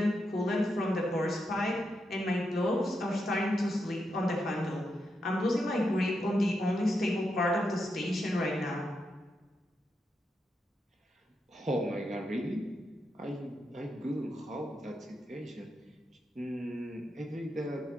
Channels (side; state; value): both; normal; correlation 0.84